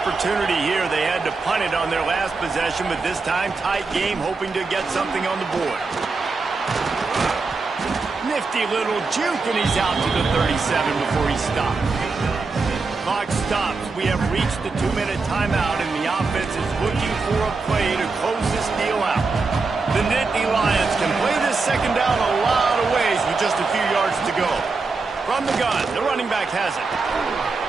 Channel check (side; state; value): left; quieter; 4.1 dB